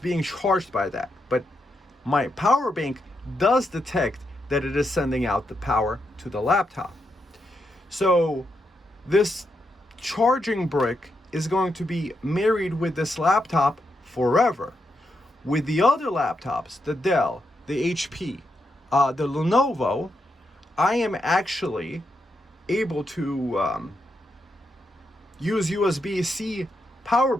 being charged by that. But my power bank does detect that it is sending out the power to the laptop. So this charging brick is going to be married with this laptop forever. With the other laptops, the Dell, the HP, the Lenovo, I am actually able to use USB-C power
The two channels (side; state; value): both; normal; correlation 0.83